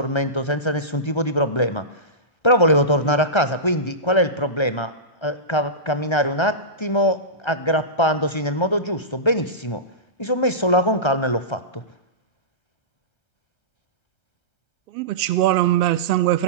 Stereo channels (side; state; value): right; late; 1.3 ms